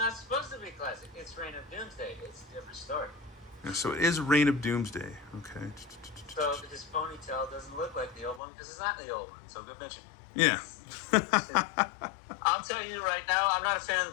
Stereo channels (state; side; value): drops out; right; at 8.4 s